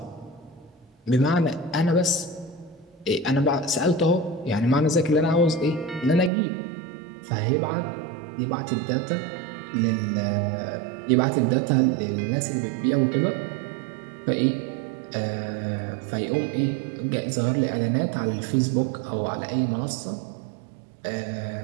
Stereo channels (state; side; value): drops out; left; at 6.3 s